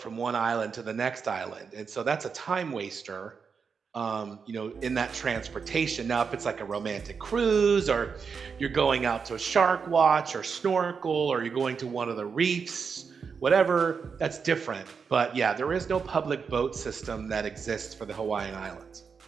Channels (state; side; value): quieter; left; 5.8 dB